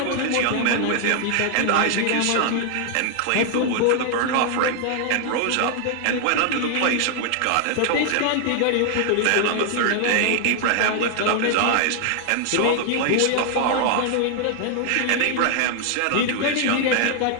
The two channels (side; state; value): both; different; correlation 0.00